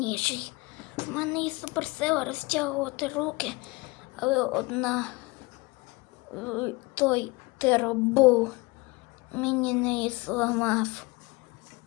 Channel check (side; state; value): right; quieter; 24.7 dB